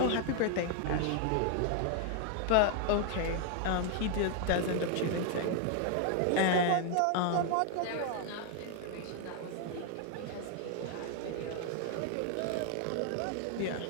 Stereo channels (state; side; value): different; both; correlation 0.00